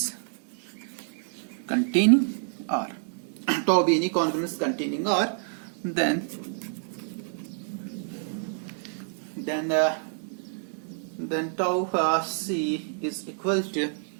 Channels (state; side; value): silent; left; 59 dB below the other